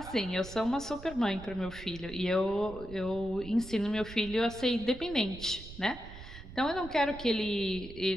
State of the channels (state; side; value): noise; right; rumble, 14 dB below the sound